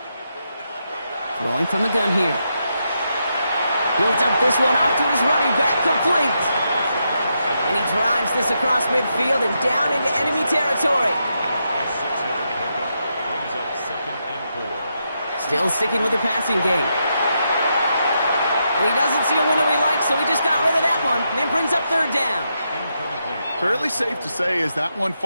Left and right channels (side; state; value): both; inverted; correlation -0.83